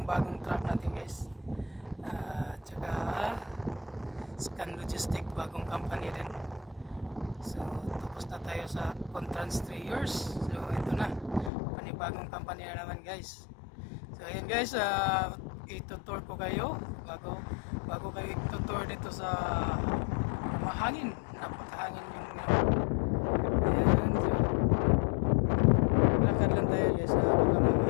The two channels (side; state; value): right; drops out; at 11.5 s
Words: bagong truck natin guys. Tsaka Scan Logistic, bagong company din. So tapos na tayo sa Contrans 3 years. So ito na, panibagong company na naman guys. So ayan guys, itutour ko kayo bago kayo itutour dito sa mahangin, napakahangin yung ayan. So lakad lang tayo guys, baka